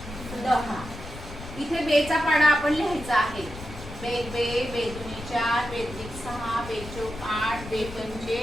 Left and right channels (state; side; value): noise; left; rumble, 12 dB below the sound